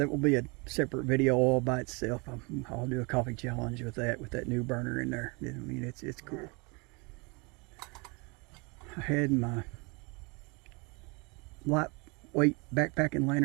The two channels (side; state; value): left; quieter; 29.6 dB